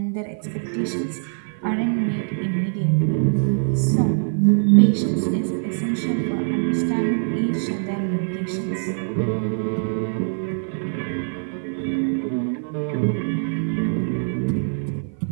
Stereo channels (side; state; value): left; silent; 55 dB below the other